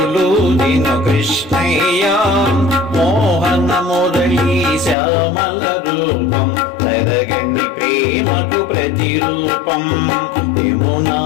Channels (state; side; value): drops out; right; at 5.0 s